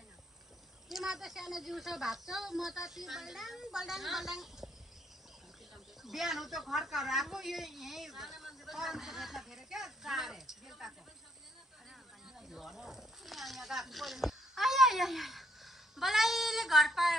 तिमीहरू त सानो जिउसो भाग्छौ म त ती बल्डाङ बल्डाङ बल्डाङ बिहान त घरकार आएको यो यहीँ फेरि क्या चारे बलाइले घर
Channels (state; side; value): normal; both; correlation 0.70